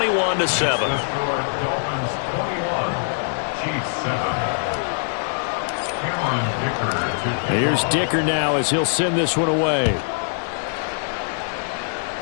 Here's Dicker now as he'll send this one away.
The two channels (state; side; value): silent; right; digital silence